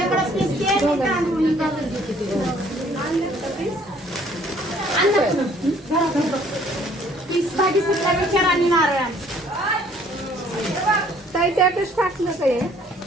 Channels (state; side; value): normal; both; correlation 0.59